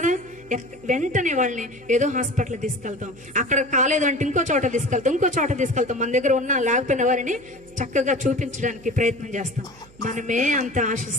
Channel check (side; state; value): right; noise; hum, 25 dB below the sound